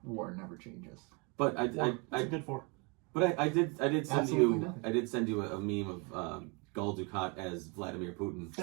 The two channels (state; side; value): quieter; left; 31.4 dB